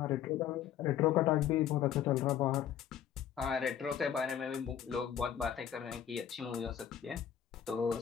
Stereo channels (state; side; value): quieter; right; 9.6 dB